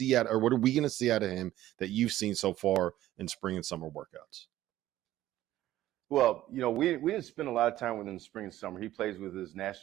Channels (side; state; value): left; quieter; 14.2 dB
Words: what are we going to see out of him that you've seen so far in spring and summer workouts? Well, we didn't spend a lot of time with him in spring and summer. He plays with his